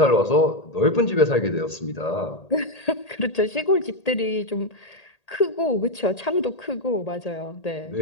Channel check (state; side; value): late; right; 1.8 ms